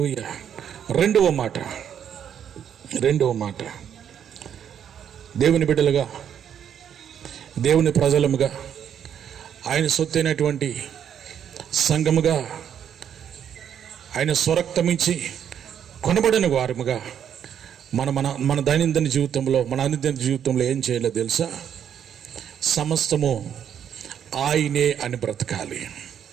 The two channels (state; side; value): quieter; left; 8.9 dB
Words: రెండవ మాట, దేవుని బిడ్డలుగా, దేవుని ప్రజలముగా, ఆయన సొత్తైనటువంటి సంఘముగా, ఆయన స్వరక్తమించి కొనబడిన వారముగా మన దైనందిన జీవితంలో, మన అనుదిన జీవితంలో ఏం చేయాలో తెలుసా? సమస్తము ఆయనే అని బ్రతకాలి.